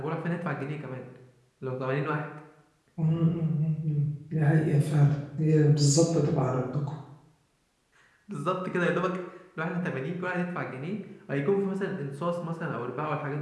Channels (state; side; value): identical; both; correlation 1.00